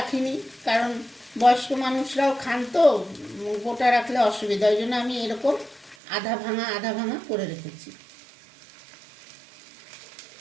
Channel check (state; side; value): drops out; left; at 6.0 s